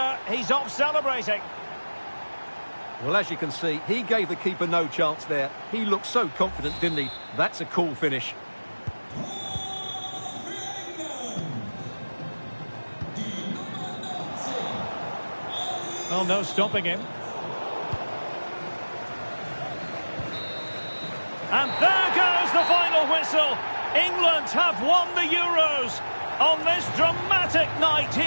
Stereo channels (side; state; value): both; inverted; correlation -1.00